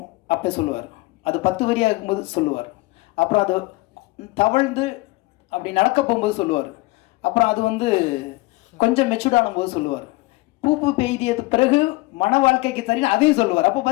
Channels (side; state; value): right; quieter; 22.0 dB